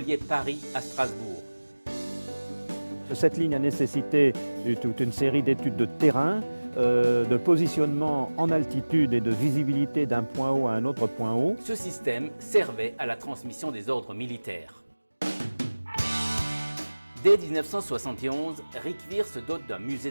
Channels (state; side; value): inverted; both; correlation -1.00